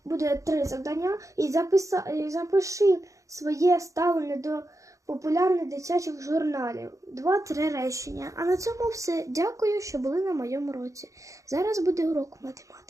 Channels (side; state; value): left; late; 0.15 ms